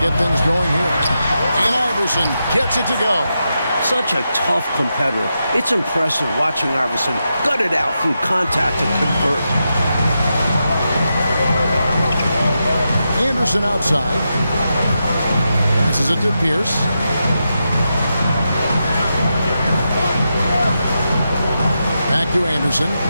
things going here. And Iverson gets it to go. Such a tough competitor. It's impressive watching Iverson gut it out through contact and convert. Anderson outside. Passes it to Pierce. Back to Anderson.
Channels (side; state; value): both; inverted; correlation -0.87